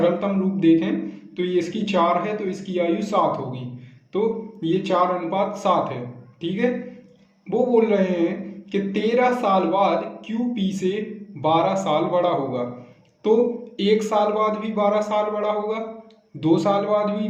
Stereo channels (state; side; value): identical; both; correlation 1.00